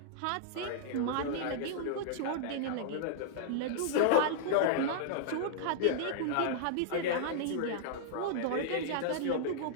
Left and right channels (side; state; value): both; different; correlation -0.02